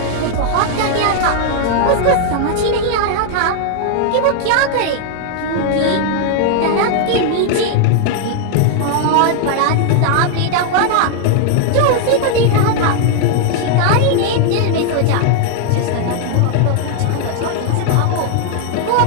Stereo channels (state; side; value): different; both; correlation 0.00